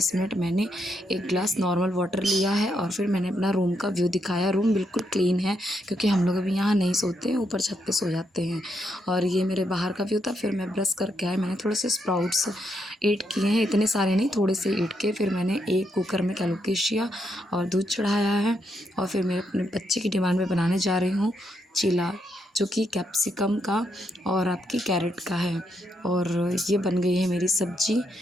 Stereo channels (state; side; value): normal; both; correlation 0.79